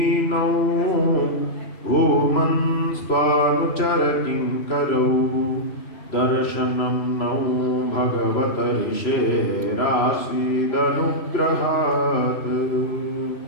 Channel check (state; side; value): late; right; 3.0 ms